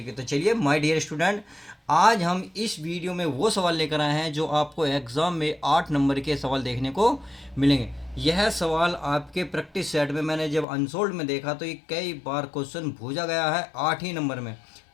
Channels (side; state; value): right; drops out; at 10.7 s